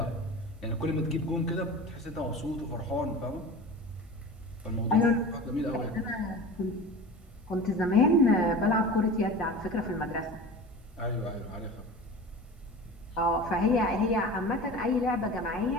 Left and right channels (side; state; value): both; normal; correlation 0.34